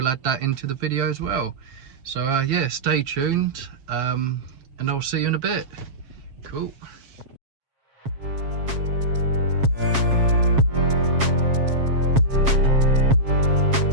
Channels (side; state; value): left; late; 7.4 ms